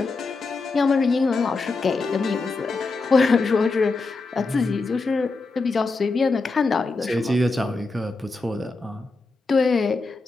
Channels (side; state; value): right; quieter; 3.7 dB